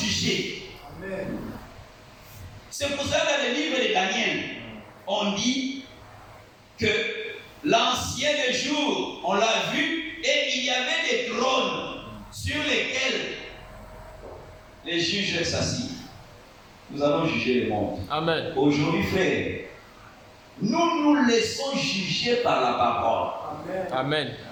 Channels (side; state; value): both; identical; correlation 1.00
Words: Amen. C'est pour ça que dans le livre de Daniel, on dit que l'ancien des jours, on l'a vu, et il y avait des trônes sur lesquels les juges s'assient. Nous allons juger le monde. Amen. Aujourd'hui, frère, nous nous laissons juger par la parole. Amen.